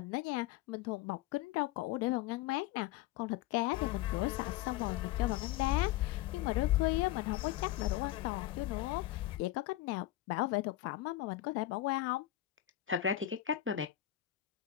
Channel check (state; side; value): quieter; right; 14.4 dB